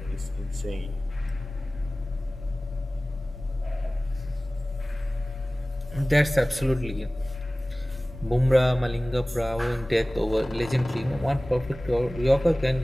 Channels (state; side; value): normal; both; correlation 0.98